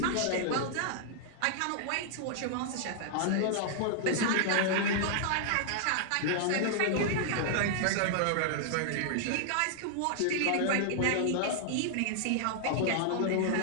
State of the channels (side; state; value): both; different; correlation -0.01